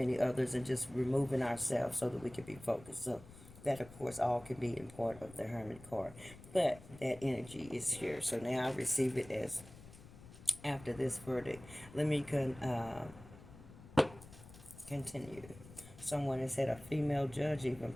others, and just removing ourselves so that we can be focused. So that, of course, all can be in part of the Hermit card. But that energy is here. So now I receive it as after this verdict. Let me continue. Someone has had a female judge, even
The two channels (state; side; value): noise; left; rumble, 18 dB below the sound